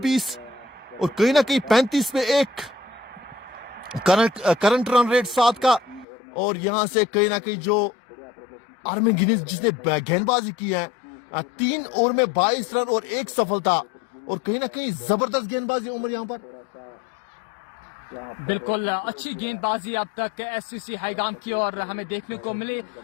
20, और कहीं ना कहीं 35 में 1 करंट रन रेट 7 का। और यहां से कहीं ना कहीं जो आर्मिन गिनीज जिसने गेंदबाजी की है, 3 ओवर में 22 रन और 1 सफलता, और कहीं ना कहीं जबरदस्त गेंदबाजी उमर यहां पर। बिल्कुल अच्छी गेंदबाजी अब तक एससीसी हाईगाम की और हमें देखने को मिली,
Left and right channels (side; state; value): right; drops out; at 6.1 s